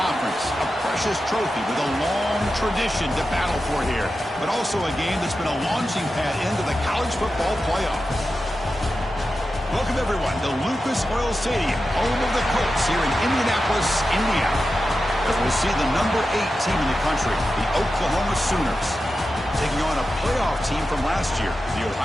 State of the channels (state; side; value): normal; both; correlation 0.91